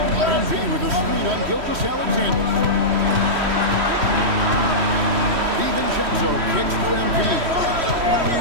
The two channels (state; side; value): late; left; 3.1 ms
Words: MV with a screen on Gilgeous-Alexander. DiVincenzo kicks to MV.